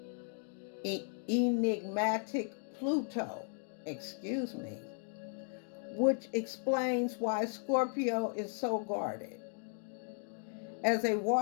enigmatic Pluto, which explains why Scorpio is so guarded. As a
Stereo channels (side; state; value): right; silent; 54 dB below the other